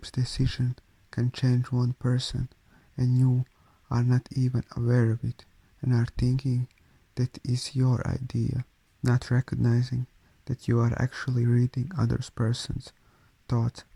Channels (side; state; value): both; identical; correlation 1.00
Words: decision can change one person, and you are not even aware of it, and are thinking that is your idea, not recognizing that you are actually reading others person's thoughts